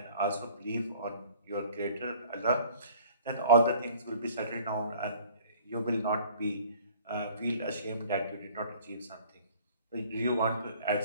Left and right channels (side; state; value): both; inverted; correlation -0.50